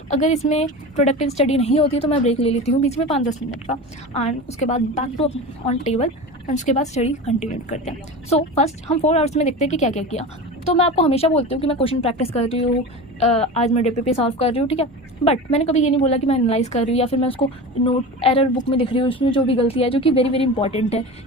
अगर इसमें प्रोडक्टिव स्टडी नहीं होती तो मैं ब्रेक ले लेती हूँ बीच में 5-10 मिनट का, एंड उसके बाद back to on table and उसके बाद स्टडी कंटिन्यू करते हैं। सो फर्स्ट हम 4 आवर्स में देखते हैं कि क्या क्या किया। तो मैं आपको हमेशा बोलती हूँ कि मैं क्वेश्चन प्रैक्टिस कर रही हूँ, आज मैं डीपीपी सॉल्व कर रही हूँ, ठीक है, बट मैंने कभी ये नहीं बोला कि मैं एनालाइज कर रही हूँ या फिर मैं उसको नोट एरर बुक में दिख रही हूँ उसमें जो भी गलती है, जो कि वेरी वेरी इंपॉर्टेंट है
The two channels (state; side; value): normal; both; correlation 0.29